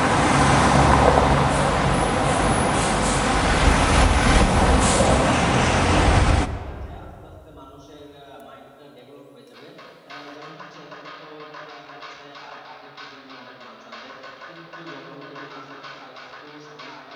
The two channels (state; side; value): identical; both; correlation 1.00